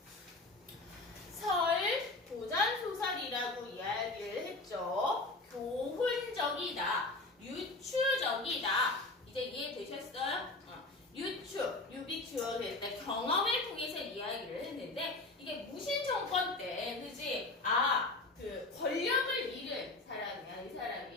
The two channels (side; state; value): right; quieter; 3.1 dB